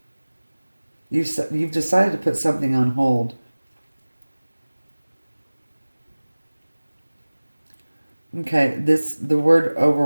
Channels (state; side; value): inverted; both; correlation -1.00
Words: You've decided to put something on hold. Okay, the word